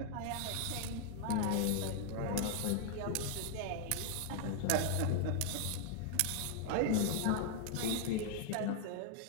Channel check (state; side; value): different; both; correlation 0.00